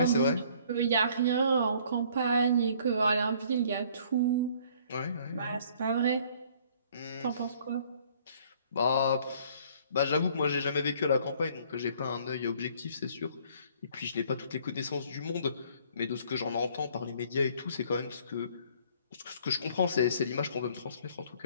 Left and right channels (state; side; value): inverted; both; correlation -0.58